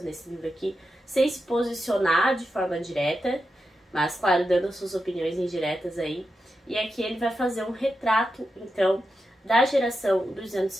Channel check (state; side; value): normal; both; correlation 0.89